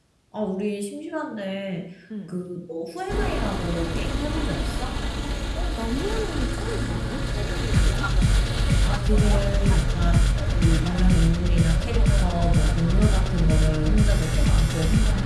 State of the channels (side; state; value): both; identical; correlation 1.00